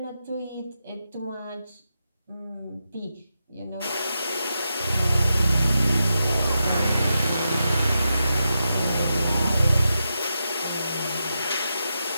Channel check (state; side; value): inverted; both; correlation -0.87